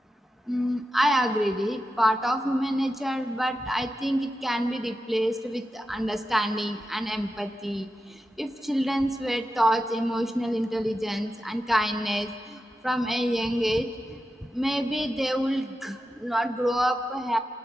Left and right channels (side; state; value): both; normal; correlation 0.90